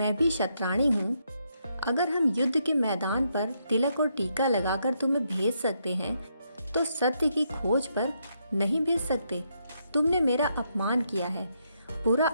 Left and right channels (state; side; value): inverted; both; correlation -0.78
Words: भी शतरानी हूँ। अगर हम युद्ध के मैदान पर तिलक और टीका लगाकर तुम्हें भेज सकते हैं, तो सत्य की खोज पर नहीं भेज सकते। तुमने मेरा अपमान किया है, बुरा